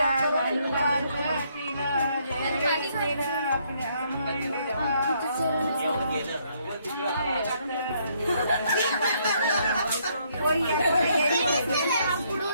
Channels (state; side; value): inverted; both; correlation -0.70